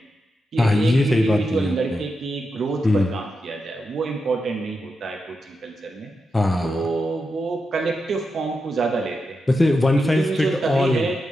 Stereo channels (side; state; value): both; normal; correlation 0.87